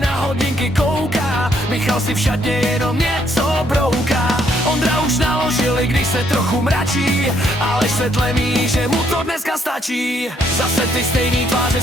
hodinky kouká, Michal si v šatně jenom něco brouká. Ondra už naložil, i když se trochu mračí, ale se tlemí, že mu to dneska stačí. Zase ty stejný tváře,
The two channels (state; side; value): normal; both; correlation 0.70